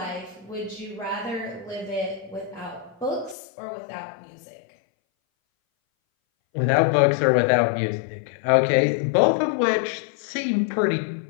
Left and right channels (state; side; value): drops out; right; at 3.4 s